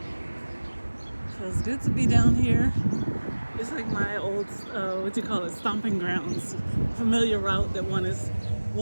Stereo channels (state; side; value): inverted; both; correlation -1.00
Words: So it's good to be down here. It's like my old, stomping grounds. Familiar route that one has